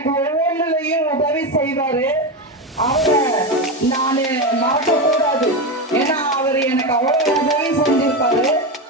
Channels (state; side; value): normal; both; correlation 0.15